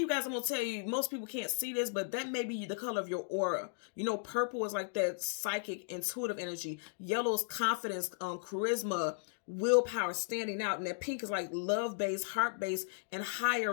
you guys, I'm going to tell you, most people can't see this, but that may be the color of your aura. You know, purple is like that psychic, intuitive energy. Yellow is confidence, charisma, willpower, standing out. And that pink is like love-based, heart-based, and higher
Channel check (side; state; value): right; silent; digital silence